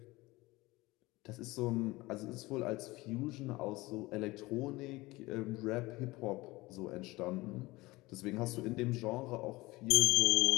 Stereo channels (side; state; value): right; quieter; 20.8 dB